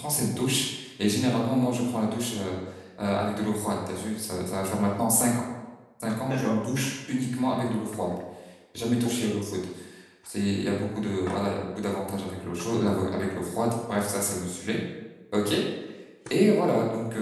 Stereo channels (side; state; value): both; identical; correlation 1.00